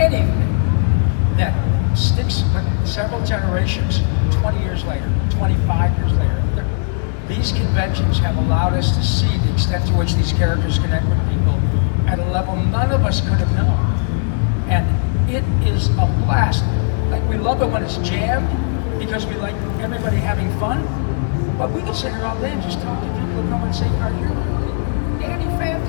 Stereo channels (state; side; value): silent; right; digital silence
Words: that sticks with several generations, 20 years later, 25 years later. These conventions have allowed us to see the extent to which these characters connect with people at a level none of us could have known. And it is a blast. Like, we love it when it's jammed because we like everybody having fun. But we can sit here all day and just talk to people and come and say, "Are you really Danny